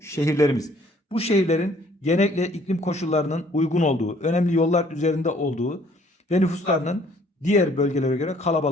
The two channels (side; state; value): both; normal; correlation 0.60